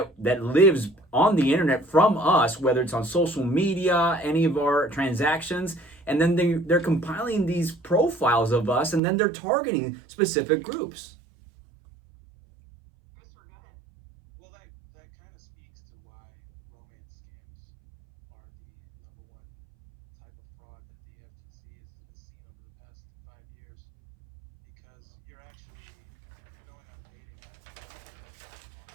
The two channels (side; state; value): left; drops out; at 9.0 s